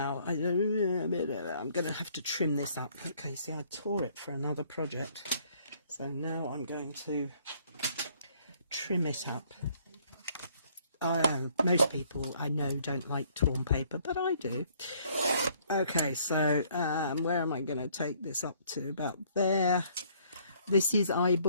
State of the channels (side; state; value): both; inverted; correlation -0.63